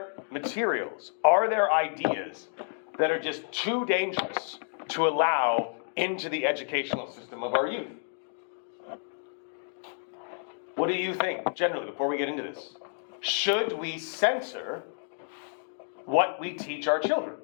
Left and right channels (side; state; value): right; silent; 58 dB below the other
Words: materials, are there ideas that are just too dangerous to allow into the educational system of our youth? What do you think, generally, before we get into this? Should we censor what we teach our children,